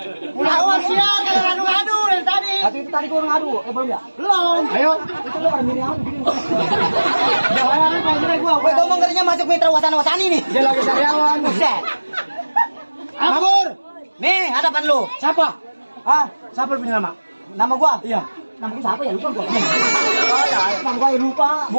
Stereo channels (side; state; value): both; inverted; correlation -1.00